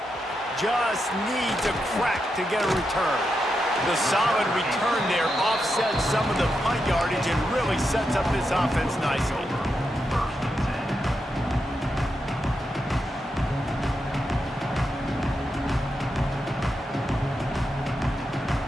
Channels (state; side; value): normal; both; correlation 0.86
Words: Just needs a crack to get a return. The solid return there offsets some of the punt yardage and really sets up this offense nicely.